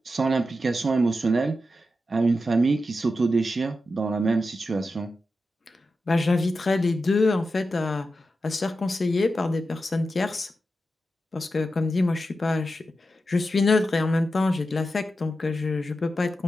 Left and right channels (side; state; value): both; normal; correlation 0.90